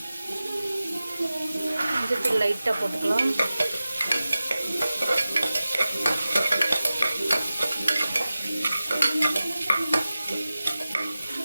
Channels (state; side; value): inverted; both; correlation -0.95